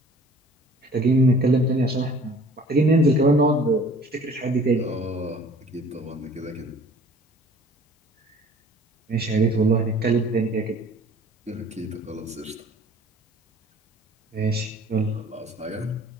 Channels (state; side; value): normal; both; correlation 0.51